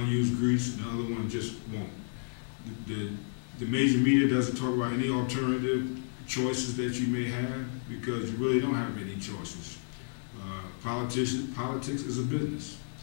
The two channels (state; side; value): silent; right; 57 dB below the other